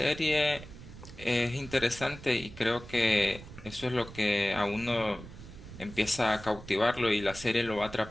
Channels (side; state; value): right; noise; rumble, 15 dB below the sound